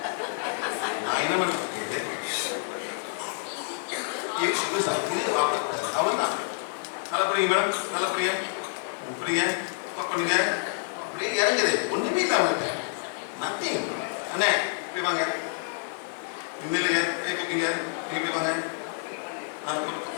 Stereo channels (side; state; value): right; silent; digital silence